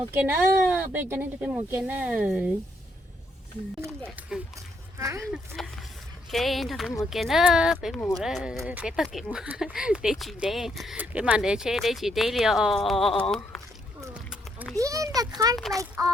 cái nữa. Bé cho nên cho bé mua cái nữa. Ok, cho bé mua cái nữa. Bé mua đó, bé tao kể mua. Để chị đây, bé màn để chơi đây chị đây liều. Be in the car like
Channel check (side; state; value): both; normal; correlation 0.74